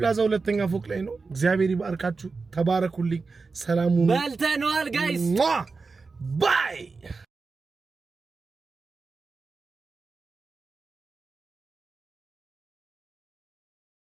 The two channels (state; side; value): quieter; left; 4.3 dB